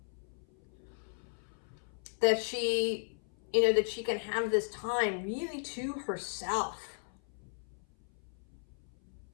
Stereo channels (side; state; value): right; silent; 54 dB below the other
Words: That she, you know, that she can have this time really to herself